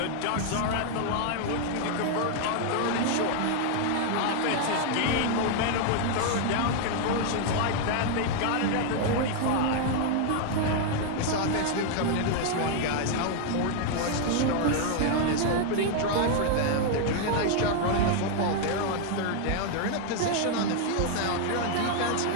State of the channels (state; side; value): different; both; correlation 0.00